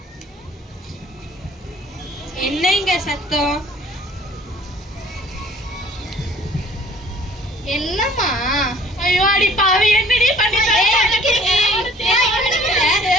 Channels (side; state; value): both; normal; correlation 0.54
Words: என்னங்க சத்தம்? என்னம்மா? ஐயோ அடி பாவி என்னடி பண்ணிட்ட?